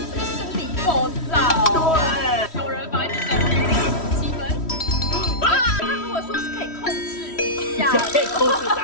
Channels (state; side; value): late; right; 3.1 ms